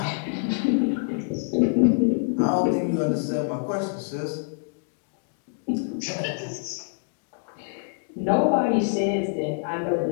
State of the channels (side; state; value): right; silent; digital silence